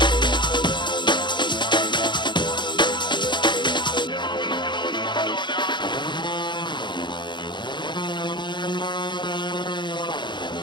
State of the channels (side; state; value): right; late; 0.22 ms